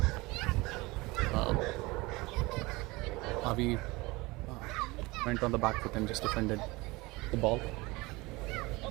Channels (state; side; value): quieter; left; 22.9 dB